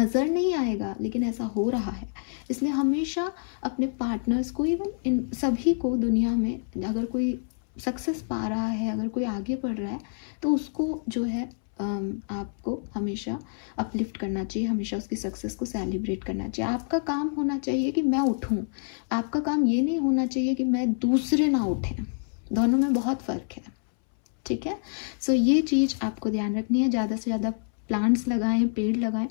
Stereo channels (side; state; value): right; silent; 60 dB below the other